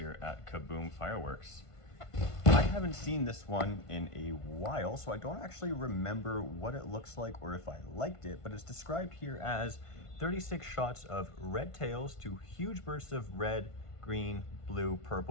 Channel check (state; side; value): late; right; 1.5 ms